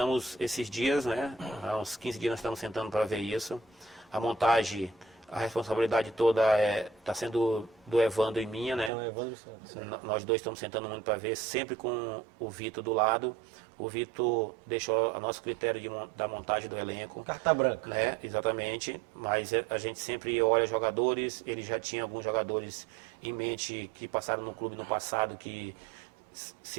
esses dias, né? Há uns 15 dias nós estamos sentando para ver isso. A montagem, a responsabilidade toda está sendo do Evandro e minha, né? Então, Evandro Santos. Nós dois estamos sentando muito para ver, sempre com o Vitor do lado. O Vitor deixou a nosso critério da montagem do elenco. Carta branca. Né? Exatamente, mas a gente sempre olha jogadores, ele já tinha alguns jogadores em mente que passaram no clube no passado, que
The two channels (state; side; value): drops out; left; at 8.9 s